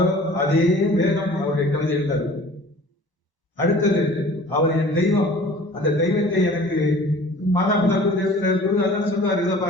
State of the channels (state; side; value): late; right; 1.0 ms